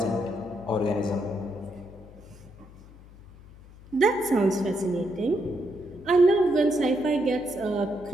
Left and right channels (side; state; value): left; noise; hum, 21 dB below the sound